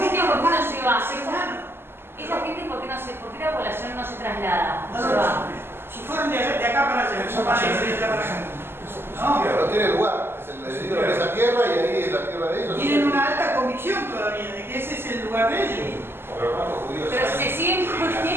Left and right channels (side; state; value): left; late; 0.11 ms